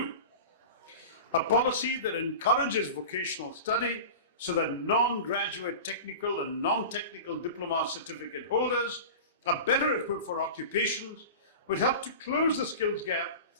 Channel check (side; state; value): both; inverted; correlation -0.32